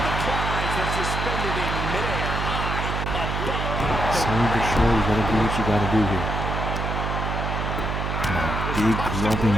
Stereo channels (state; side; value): noise; right; hum, 2 dB below the sound